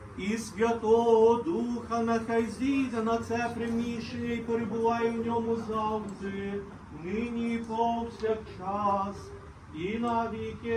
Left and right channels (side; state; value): both; identical; correlation 1.00